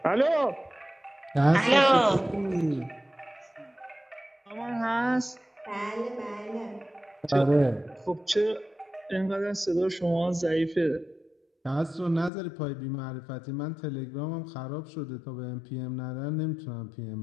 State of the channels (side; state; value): right; drops out; at 12.3 s